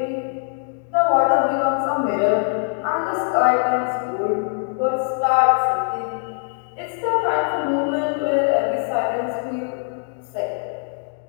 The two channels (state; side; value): silent; right; 64 dB below the other